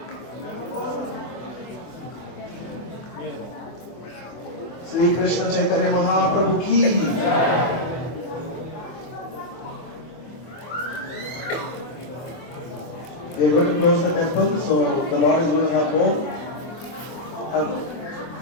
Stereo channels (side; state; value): right; late; 24 ms